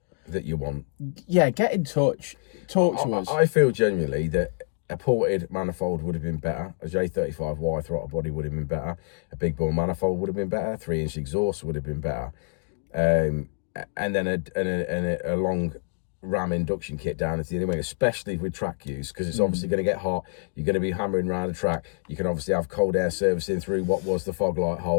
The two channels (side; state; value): right; silent; 60 dB below the other